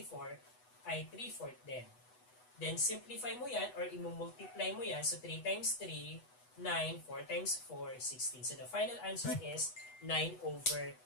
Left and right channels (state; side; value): late; right; 8.1 ms